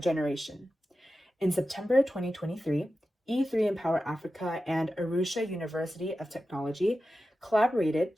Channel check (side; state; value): both; normal; correlation 0.93